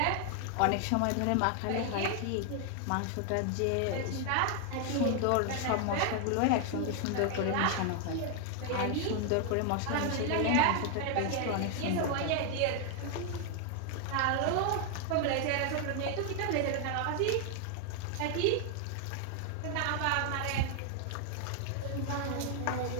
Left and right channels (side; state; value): both; different; correlation 0.00